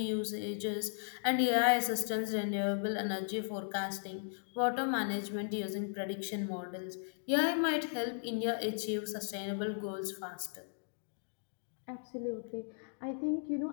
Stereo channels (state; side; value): silent; right; digital silence